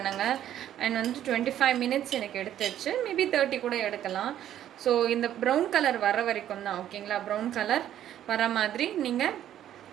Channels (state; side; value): quieter; left; 11.3 dB